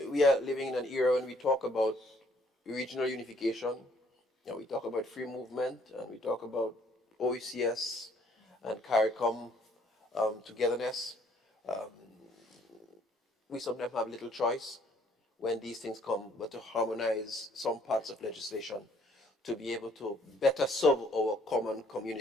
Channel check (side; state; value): both; normal; correlation 0.63